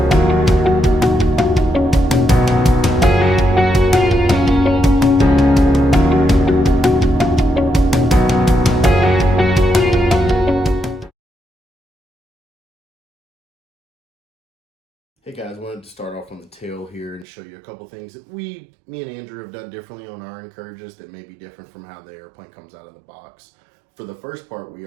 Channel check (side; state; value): left; drops out; at 17.2 s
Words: Hey guys, wanted to start off on the tail here and show you a couple things that me and Andrew have done differently on our Encourages that may be different from how the airplane comes out of the box. For the first part, we